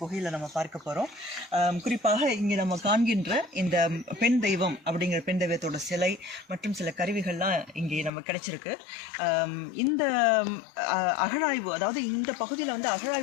நம்ம பார்க்க போகிறோம். குறிப்பாக இங்கே நம்ம காண்கின்ற இந்த பெண் தெய்வம் அப்படிங்கிற பெண் தெய்வத்தோட சிலை மற்றும் சில கருவிகள்லாம் இங்கே நம்ம கிடைச்சிருக்கு. இந்த அகழாய்வு, அதாவது இந்த பகுதியில்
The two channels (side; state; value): right; drops out; at 8.1 s